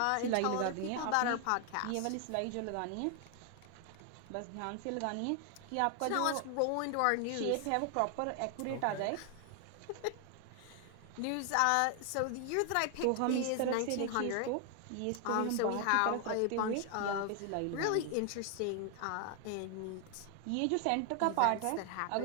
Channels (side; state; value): both; different; correlation 0.00